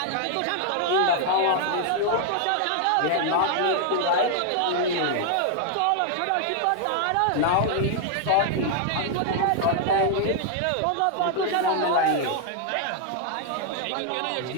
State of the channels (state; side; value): different; both; correlation 0.00